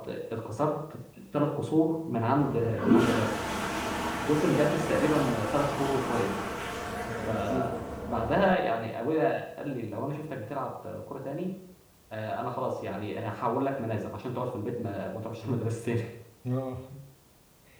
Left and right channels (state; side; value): identical; both; correlation 1.00